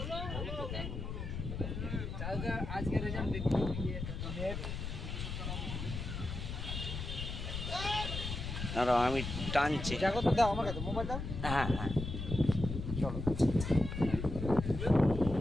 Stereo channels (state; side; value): noise; left; rumble, 5 dB below the sound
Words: আজকের রেজাল্ট দেখুন। দাঁড়াও আমি টানছি। জাগো তো দাও আমাকে, তো মোবাইল দাও। হ্যাঁ হ্যাঁ চলো